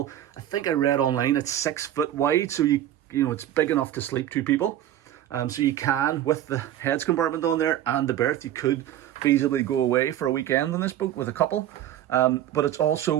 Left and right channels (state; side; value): quieter; left; 12.0 dB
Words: I think I read online it's 6 foot wide, so you know it's big enough to sleep 2 people. So you can, with the heads compartment on there and the berth, you could feasibly go away for a weekend on this boat with a couple. But it's